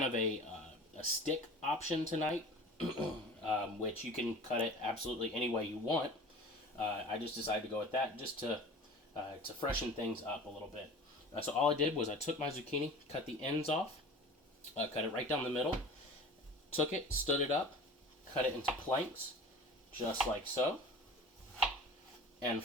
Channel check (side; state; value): both; normal; correlation 0.40